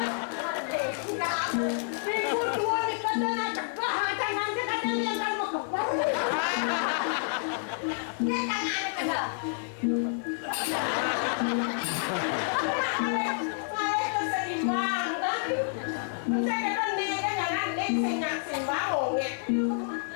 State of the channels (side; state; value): right; silent; digital silence